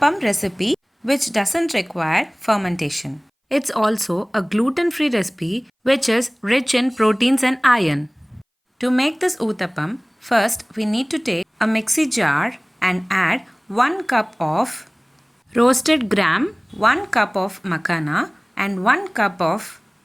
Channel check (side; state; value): both; identical; correlation 1.00